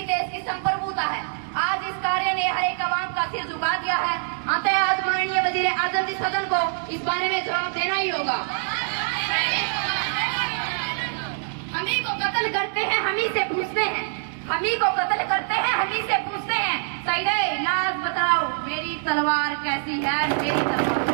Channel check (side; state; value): left; silent; digital silence